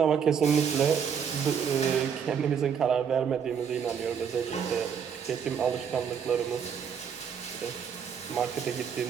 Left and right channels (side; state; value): left; quieter; 7.4 dB